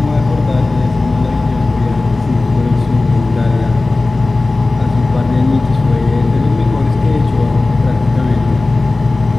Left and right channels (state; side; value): quieter; right; 3.2 dB